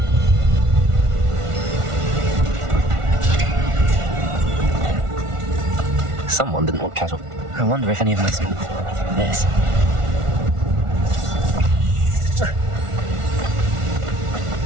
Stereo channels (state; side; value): late; left; 1.4 ms